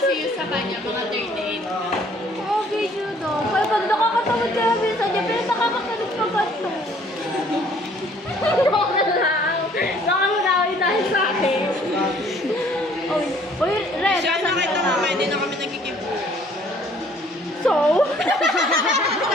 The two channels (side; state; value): both; normal; correlation 0.59